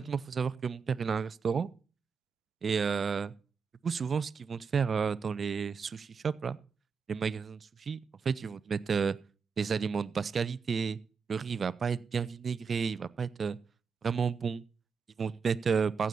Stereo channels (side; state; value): left; quieter; 5.7 dB